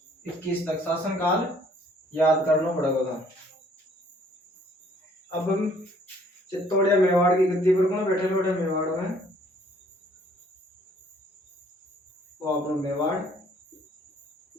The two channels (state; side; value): normal; both; correlation 0.60